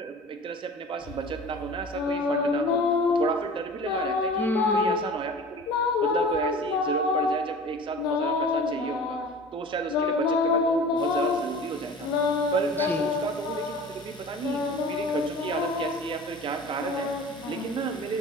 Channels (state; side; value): normal; both; correlation 0.40